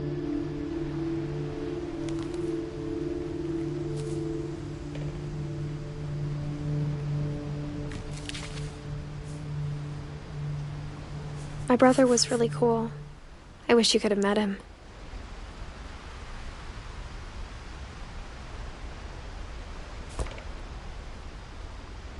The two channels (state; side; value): identical; both; correlation 1.00